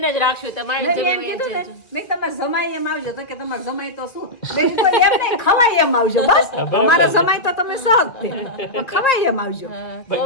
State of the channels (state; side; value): late; right; 2.0 ms